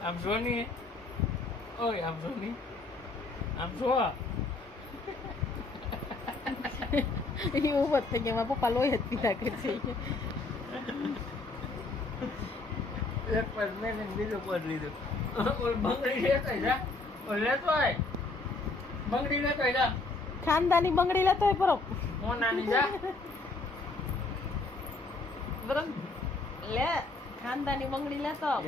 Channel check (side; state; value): right; quieter; 3.4 dB